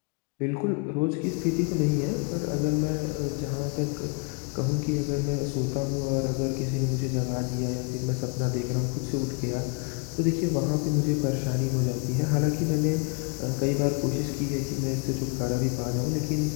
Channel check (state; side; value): quieter; right; 32.6 dB